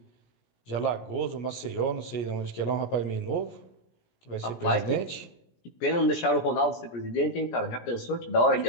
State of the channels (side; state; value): right; late; 17 ms